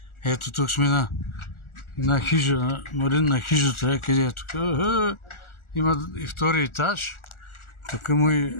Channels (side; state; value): right; late; 1.4 ms